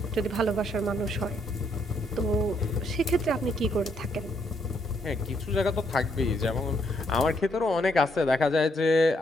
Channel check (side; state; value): both; normal; correlation 0.73